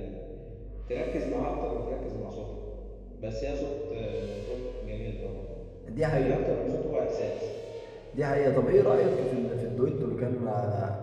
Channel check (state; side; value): identical; both; correlation 1.00